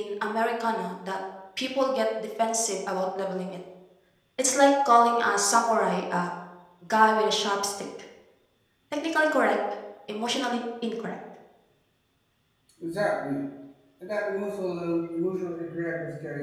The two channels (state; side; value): identical; both; correlation 1.00